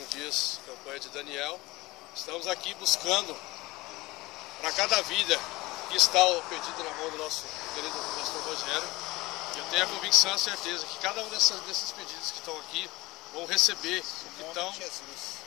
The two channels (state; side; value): quieter; right; 21.0 dB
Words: dias, campanha de Daniel. Estamos aqui buscando para cada vida que está perdida na mão do nosso querido pastor Rogério. Eu tenho a convicção e a certeza que cada um desses pedidos que estão aqui vão receber o que estão